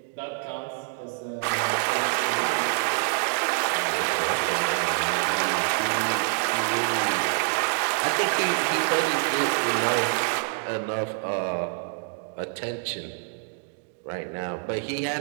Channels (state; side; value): silent; left; 61 dB below the other